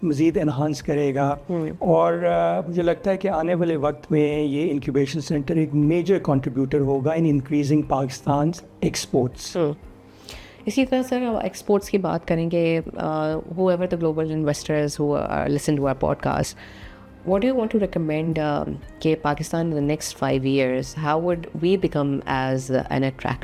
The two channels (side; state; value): both; identical; correlation 1.00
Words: مزید انہانس کرے گا. اور مجھے لگتا ہے کہ آنے والے وقت میں یہ انکیوبیشن سینٹر ایک میجر کنٹریبیوٹر ہوگا ان انکریزنگ پاکستان ایکسپورٹس. اسی طرح سر ایکسپورٹس کی بات کریں گے, whoever the global investors who are listen to our podcast, what do you want to recommend کہ Pakistan in the next 5 years, how would we become as an